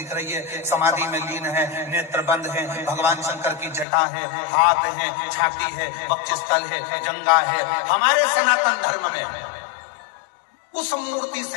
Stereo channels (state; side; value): drops out; right; at 3.9 s